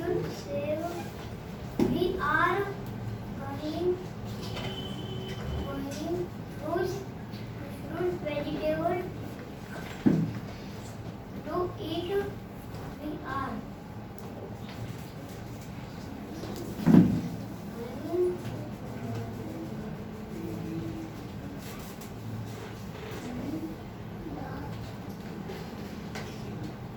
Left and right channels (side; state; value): both; identical; correlation 1.00